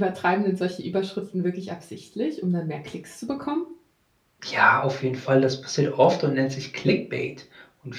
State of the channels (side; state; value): both; identical; correlation 1.00